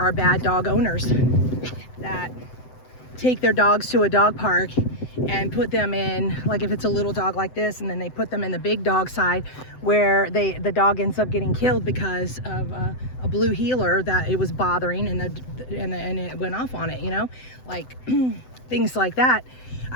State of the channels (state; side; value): late; right; 7.9 ms